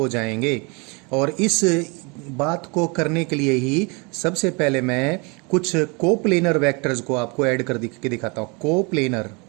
जाएंगे। और इस बात को करने के लिए ही सबसे पहले मैं कुछ कोप्लेनर वेक्टर्स को आपको ऐड कर के दिखाता हूं।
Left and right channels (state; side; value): quieter; left; 29.9 dB